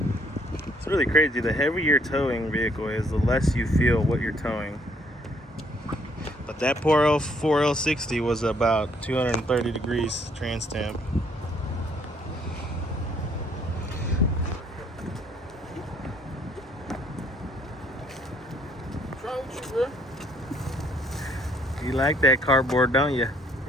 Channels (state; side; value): normal; both; correlation 0.66